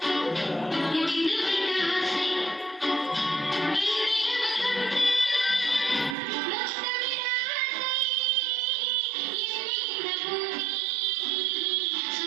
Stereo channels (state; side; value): drops out; left; at 6.2 s